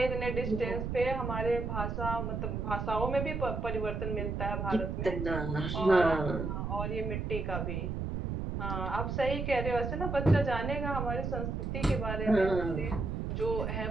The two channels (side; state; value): right; noise; rumble, 3 dB below the sound